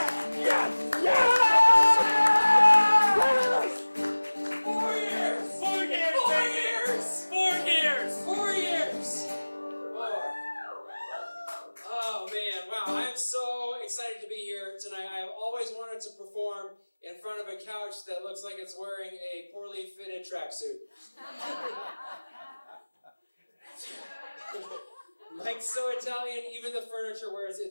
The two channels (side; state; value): both; inverted; correlation -1.00